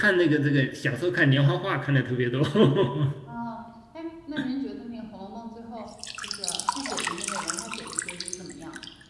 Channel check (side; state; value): both; identical; correlation 1.00